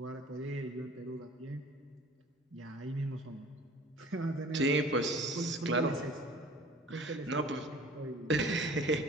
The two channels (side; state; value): both; normal; correlation 0.47